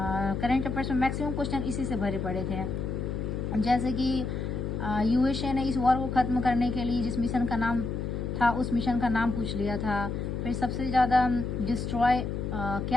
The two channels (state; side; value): noise; left; hum, 3 dB below the sound